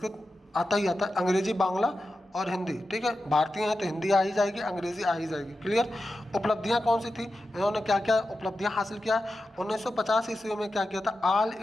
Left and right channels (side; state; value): both; normal; correlation 0.91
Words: आता ही आता है। अंग्रेजी, बांग्ला और हिंदी, ठीक है। भारतीय हैं तो हिंदी आ ही जाएगी, अंग्रेजी आ ही जाएगी, क्लियर। उपलब्धियां कौन सी थी? इन्होंने क्या क्या उपलब्धियां हासिल किया? 1950 ईस्वी में क्या किया था? ऑल